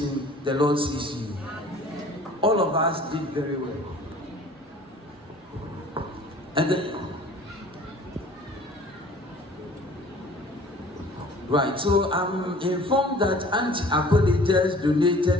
the Lord sees you. All of us did very well. And then, right, so I'm informed that Auntie Akode just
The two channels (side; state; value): both; normal; correlation 0.49